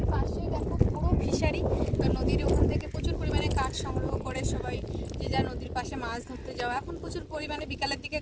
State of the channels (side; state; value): both; identical; correlation 1.00